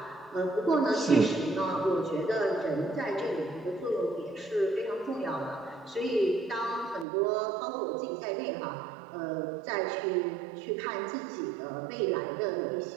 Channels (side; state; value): left; drops out; at 7.1 s